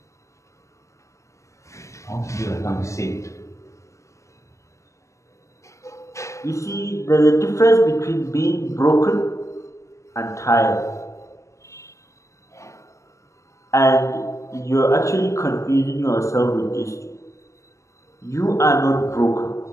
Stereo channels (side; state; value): right; late; 0.15 ms